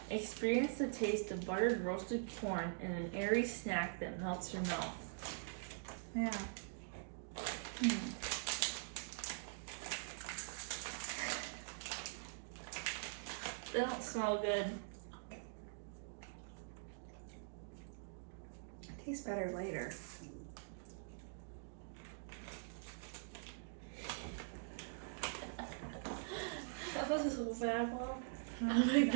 Experience the taste of buttered roasted corn in an airy snack that melts your mouth. Yeah. They don't smell good. It tastes better later. That was so bad, Mom. I'm gonna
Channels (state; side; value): silent; left; digital silence